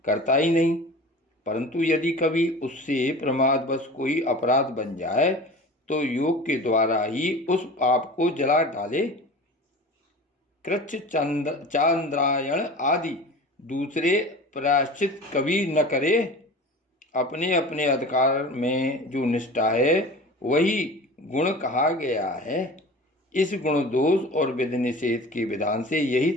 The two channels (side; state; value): both; normal; correlation 0.37